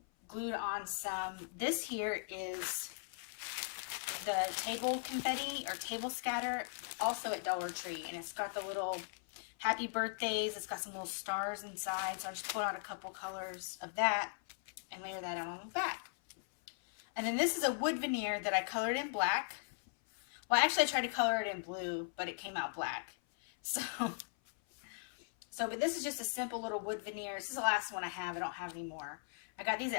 glued on some. This here is the table confetti or table scatter, also at Dollar Tree, and it's got the little happy birthdays. It's got some little stars inside, so I just pulled out a couple colors of that and layer that out on the back. And then this is a wood veneer that I colored in black. Well, actually, I tried to color it in blue, but it came out black. But this is just a simple little wood veneer. This is the last one I have. I don't have any more. I got these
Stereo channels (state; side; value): silent; right; 52 dB below the other